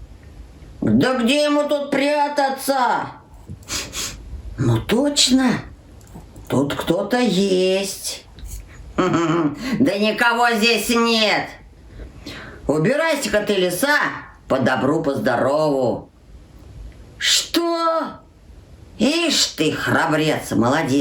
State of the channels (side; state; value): both; identical; correlation 1.00